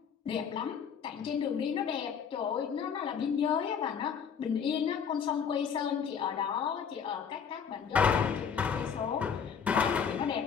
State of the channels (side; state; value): right; quieter; 7.0 dB